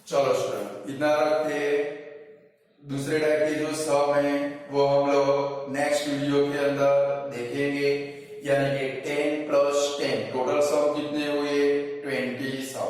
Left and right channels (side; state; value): both; identical; correlation 1.00